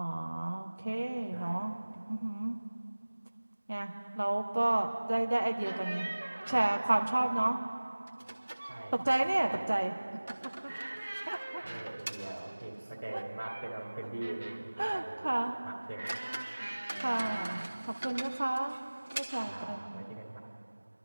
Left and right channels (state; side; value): inverted; both; correlation -1.00